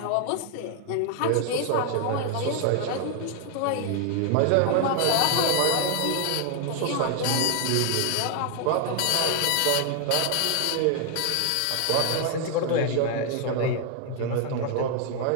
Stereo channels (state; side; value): different; both; correlation 0.00